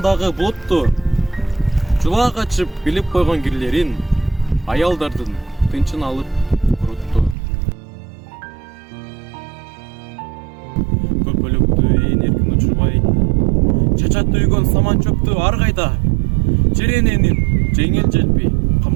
булутту, жула качып билип койгон кирлерин аялдардын тынчын алып курутту. Көкөлөктү ээн эркин учурбай, чачатты үйгөн саман чөптү ар кайда, черененин жеңил желпи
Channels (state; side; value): drops out; left; at 7.4 s